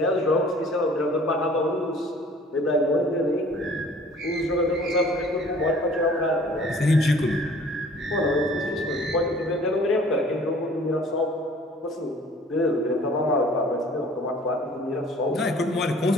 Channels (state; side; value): normal; both; correlation 0.52